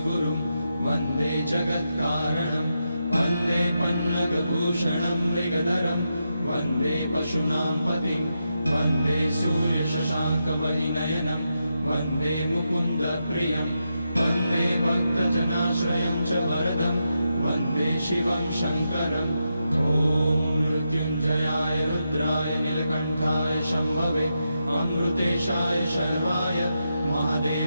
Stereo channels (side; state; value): both; inverted; correlation -0.85